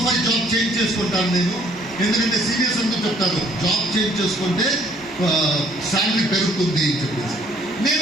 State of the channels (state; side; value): normal; both; correlation 0.62